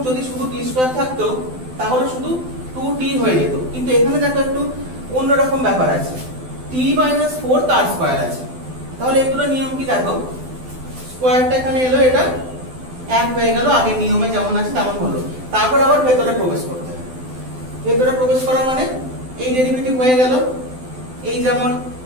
যদি শুধু t স্কয়ার থাকতো তাহলে শুধু 2t হয়ে যেত, কিন্তু এখানে দেখো একটু অন্যরকম ব্যাপার আছে, t - 4 তার স্কয়ার আছে। তাহলে এগুলো নিয়ম কি দেখো, স্কয়ারটা এখানে এলো, এটা এক হয়ে গেল, আগের নিয়মে যেমন আছে তেমন হলো। তারপর আবার ভেতরে প্রবেশ করতে হবে। ভেতরে প্রবেশ করা মানে এই ডেরিভেটিভ হয়ে গেল, এই যেমন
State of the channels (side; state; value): left; late; 12 ms